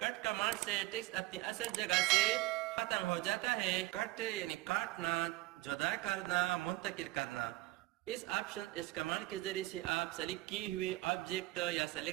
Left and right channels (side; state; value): left; quieter; 18.9 dB